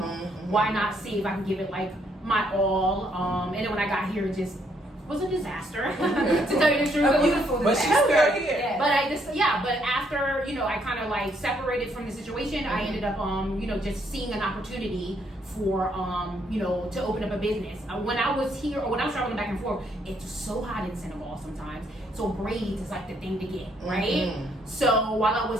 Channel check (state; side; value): normal; both; correlation 0.71